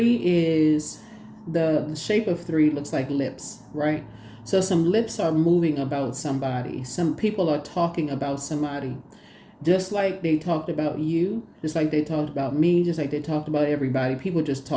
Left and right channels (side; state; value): both; identical; correlation 1.00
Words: is the shape of 3 looks like lips, right? So some lips are moving about somebody. Some people are talking about somebody. Just like they talked about you, just like they talked about me, just like they talked about everybody. People just